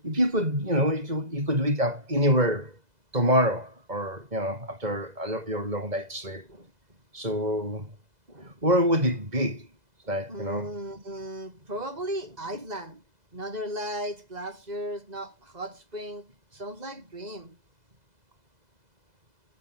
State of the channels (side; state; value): left; late; 2.0 ms